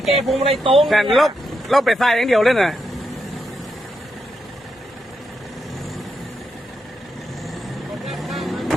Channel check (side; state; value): both; normal; correlation 0.83